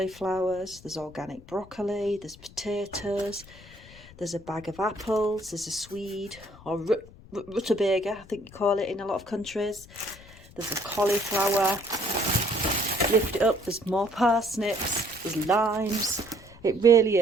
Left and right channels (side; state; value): left; noise; rumble, 21 dB below the sound